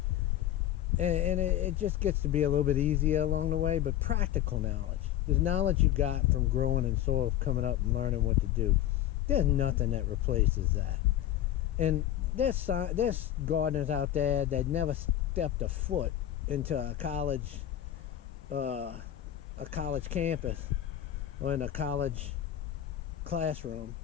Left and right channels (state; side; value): quieter; right; 12.0 dB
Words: and it just gets to be a little bit easier along the way. But practical knowledge, the knowledge you got from growing in soil, coming up and learning what to do, there's nothing that replaces that. And there's gardeners out there that never stepped a foot into a college campus or in a college classroom,